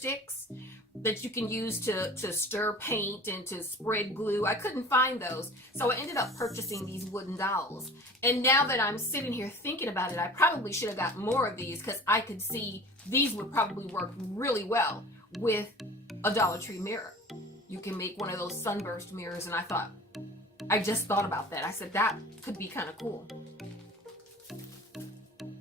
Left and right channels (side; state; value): both; normal; correlation 0.41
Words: that you can use to stir paint and to spread glue. I couldn't find those. So I ended up purchasing these wooden dolls. And now that I'm sitting here thinking about it, I probably should have got more of these because I could see these would probably work really well with a Dollar Tree mirror. You can make one of those sunburst mirrors, and I just thought about that. I said that could be kind of cool.